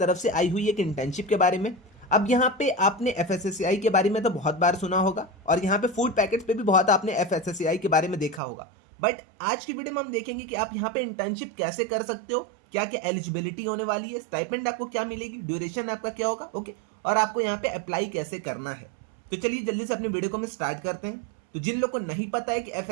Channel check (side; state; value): left; drops out; at 8.4 s